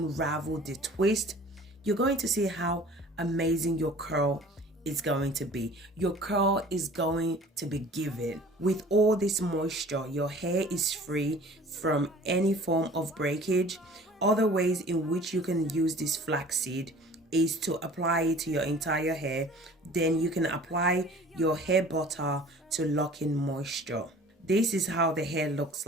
the twist, you're going to see how amazing your curl is going to be. Your curl is going to be given. With all this moisture, your hair is free from any form of breakage. Other ways in which you can use this flaxseed is to apply it to your entire hair. Then you can apply your hair butter to lock in moisture. This is how the hair looks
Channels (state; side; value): normal; both; correlation 0.47